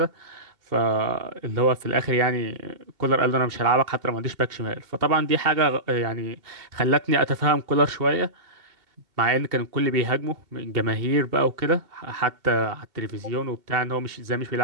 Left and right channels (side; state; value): left; late; 2.2 ms